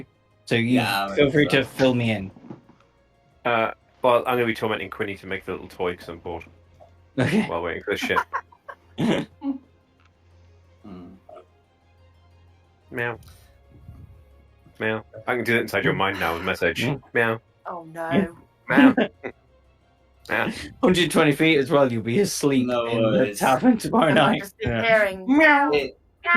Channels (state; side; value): identical; both; correlation 1.00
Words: So feel free to fill me in. Well, I'm going to be tormenting Quinny to make the little toy because I'm bored. Okay. While waiting for the ship. Meow. Meow. I can do that inside your mind now with a message. Meow. Oh no. Meow. Meow. 120 feet as well, you'll be asleep No in the worries. tavern tomorrow And I'm night. just hearing meow,